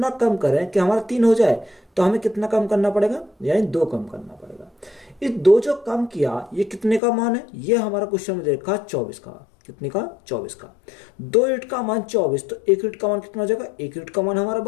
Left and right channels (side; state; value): right; drops out; at 7.0 s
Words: कम करें कि हमारा 3 हो जाए, तो हमें कितना कम करना पड़ेगा, यानी 2 कम करना पड़ेगा। इस 2 जो कम किया, ये कितने का मान है, ये हमारा क्वेश्चन में देखा 24 का। कितने का, 24 का। 2 यूनिट का मान 24, तो 1 यूनिट का मान कितना हो जाएगा, 1 यूनिट का मान हमारा